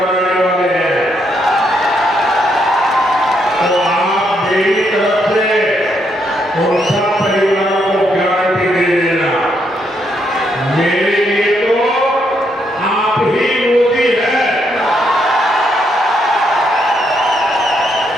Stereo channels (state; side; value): normal; both; correlation 0.76